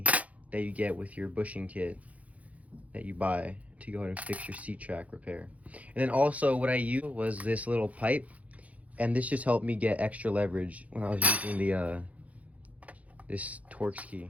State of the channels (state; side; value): late; left; 0.068 ms